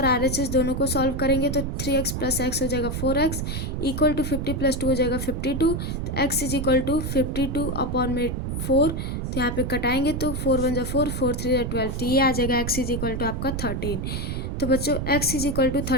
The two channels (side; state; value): right; noise; rumble, 3 dB below the sound